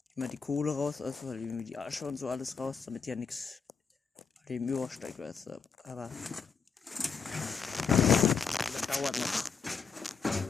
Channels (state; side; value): quieter; right; 5.7 dB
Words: die Kohle raus, also halt irgendwie die Asche und so alles raus, damit ja nichts dem übersteigt, weißt du. Aber das dauert noch.